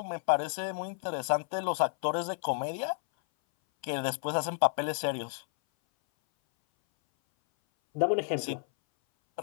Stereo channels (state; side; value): silent; right; 57 dB below the other